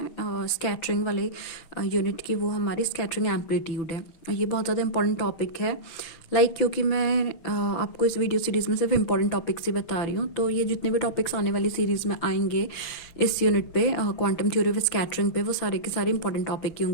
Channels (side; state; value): right; late; 6.0 ms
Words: स्कैटरिंग वाले यूनिट की, वो हमारी स्कैटरिंग एम्पलीट्यूड है। ये बहुत ज़्यादा इंपॉर्टेंट टॉपिक है। क्योंकि मैं आपको इस वीडियो सीरीज़ में सिर्फ इंपॉर्टेंट टॉपिक्स ही बता रही हूँ, तो ये जितने भी टॉपिक्स आने वाली सीरीज़ में आएंगे इस यूनिट पे क्वांटम थ्योरी ऑफ स्कैटरिंग पे, वो सारे के सारे इंपॉर्टेंट टॉपिक ही